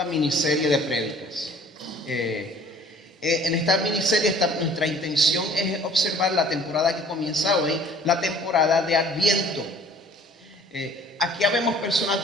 miniserie de prédicas. En esta miniserie nuestra intención es observar la temporada que comienza hoy, la temporada de Adviento. Aquí habemos personas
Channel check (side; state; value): both; normal; correlation 0.52